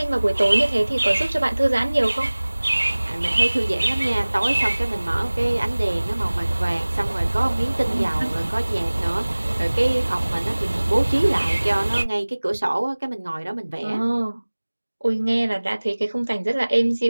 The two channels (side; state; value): both; inverted; correlation -1.00